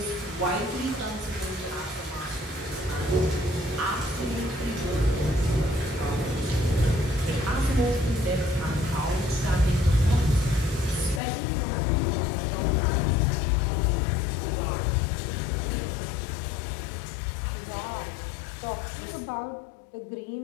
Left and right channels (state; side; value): drops out; right; at 11.2 s